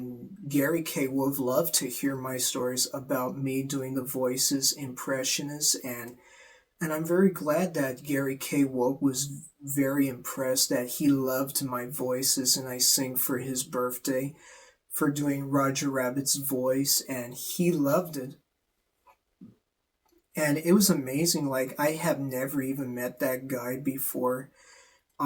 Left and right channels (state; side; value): identical; both; correlation 1.00